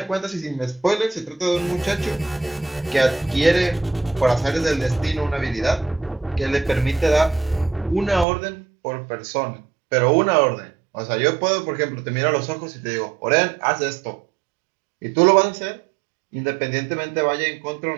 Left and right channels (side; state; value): left; drops out; at 8.2 s